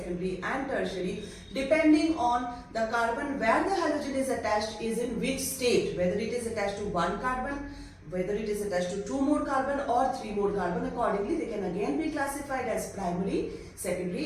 and tertiary depending on the carbon where the halogen is attached is in which state, whether it is attached to one carbon, whether it is attached to 2 more carbon or 3 more carbon. Accordingly, they can again be classified as primary,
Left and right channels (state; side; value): identical; both; correlation 1.00